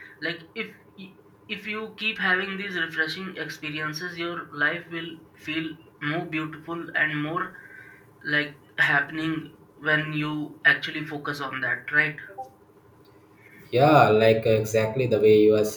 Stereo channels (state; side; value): identical; both; correlation 1.00